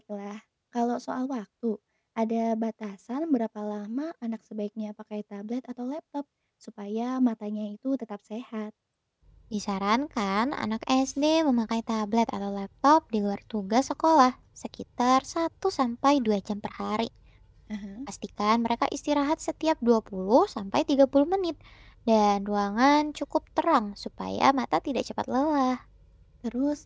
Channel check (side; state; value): both; identical; correlation 1.00